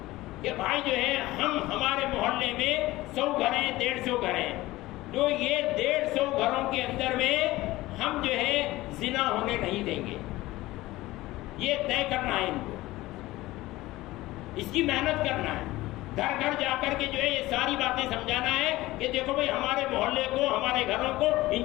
کہ بھائی جو ہے ہمارے محلے میں 100 گھر ہیں، 150 گھر ہیں، تو یہ 150 گھروں کے اندر میں ہم جو ہے زنا ہونے نہیں دیں گے، یہ طے کرنا ہے ان کو، اس کی محنت کرنا ہے، گھر گھر جا کر کے جو ہے یہ ساری باتیں سمجھانا ہے کہ دیکھو بھائی ہمارے محلے کو، ہمارے گھروں کو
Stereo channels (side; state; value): right; quieter; 18.1 dB